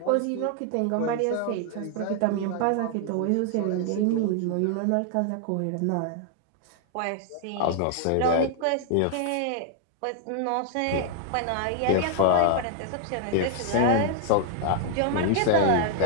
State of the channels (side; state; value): both; different; correlation 0.00